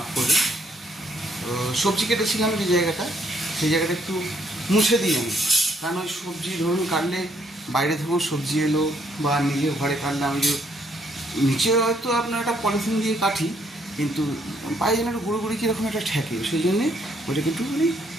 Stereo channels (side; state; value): both; normal; correlation 0.69